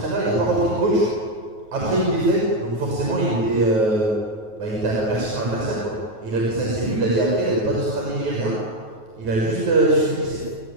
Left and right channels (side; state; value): left; late; 9.3 ms